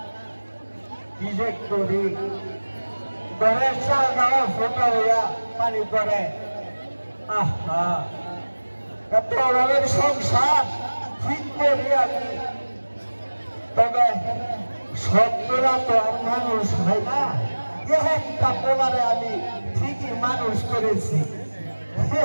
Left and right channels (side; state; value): both; inverted; correlation -1.00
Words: কি যে করি ঘরের চালটাও ফোটা হইয়া পানি পড়ে আহা এত অভাবের সংসার ঠিক করি আমি তবে সত্যরা তো আর মানুষ হয় না একটা পোলারে আমি ঠিকই মানুষ করেছি